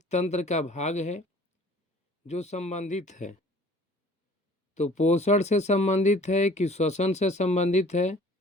तंत्र का भाग है जो संबंधित है। तो पोषण से संबंधित है कि श्वसन से संबंधित है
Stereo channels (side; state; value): both; normal; correlation 0.51